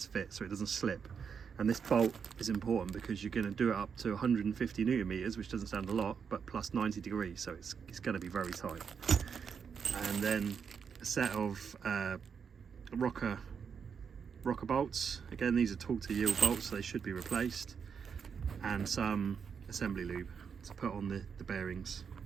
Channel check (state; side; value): quieter; left; 6.6 dB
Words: fit so it doesn't slip. And this bolt is important because you're going to do it up to 150 newton meters, which doesn't sound a lot, but plus 90 degrees, so it's going to be very tight. And then a set of rocker bolts. Again, these are torque to yield bolts, so they should be replaced, and some assembly lube to put on the bearings